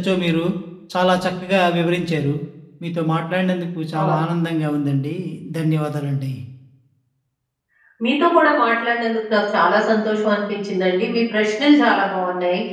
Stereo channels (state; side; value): identical; both; correlation 1.00